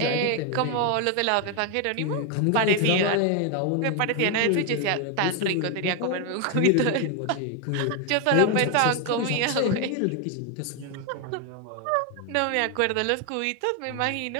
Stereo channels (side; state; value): both; different; correlation 0.01